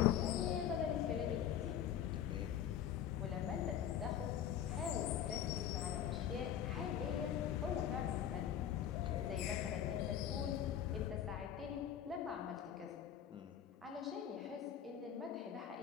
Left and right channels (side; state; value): right; quieter; 9.8 dB